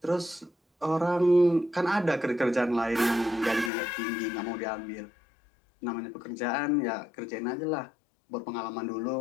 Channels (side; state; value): right; drops out; at 3.7 s